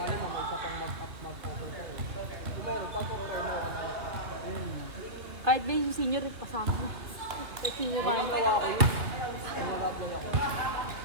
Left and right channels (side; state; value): left; late; 2.8 ms